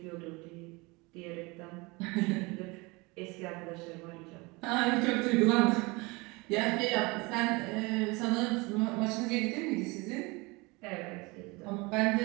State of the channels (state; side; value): quieter; left; 25.5 dB